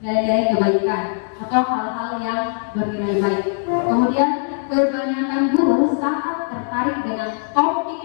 nilai-nilai kebaikan atau hal-hal yang bernilai baik. Kemudian kebanyakan guru sangat tertarik dengan topik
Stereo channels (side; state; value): right; silent; digital silence